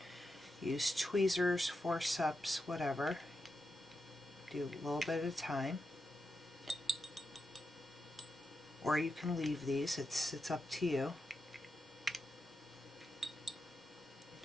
use tweezers, forceps, whatever. Do a little bit at a time. Or you can leave these, it's up to you.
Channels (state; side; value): normal; both; correlation 0.88